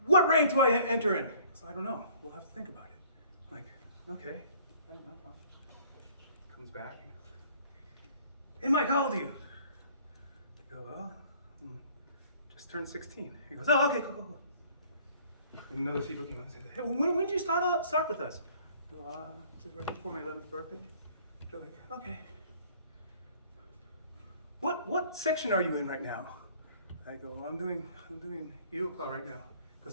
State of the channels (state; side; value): inverted; both; correlation -0.55